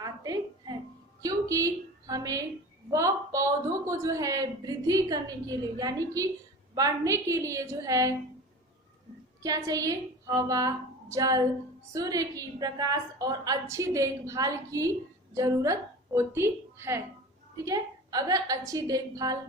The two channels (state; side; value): normal; both; correlation 0.36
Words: आते हैं, क्योंकि हमें वह पौधों को जो है वृद्धि करने के लिए, यानी कि बढ़ने के लिए जो है क्या चाहिए? हवा, जल, सूर्य की प्रकाश और अच्छी देखभाल की जरूरत होती है। ठीक है, अगर अच्छी देखभाल